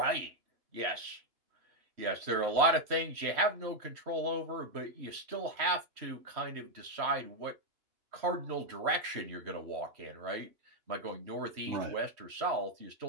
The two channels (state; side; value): late; left; 3.1 ms